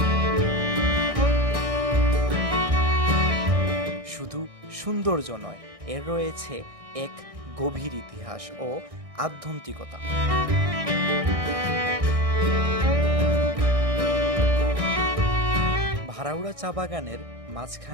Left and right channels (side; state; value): left; late; 1.6 ms